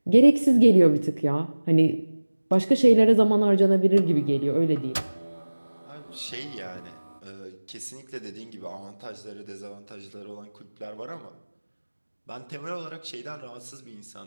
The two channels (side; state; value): both; inverted; correlation -1.00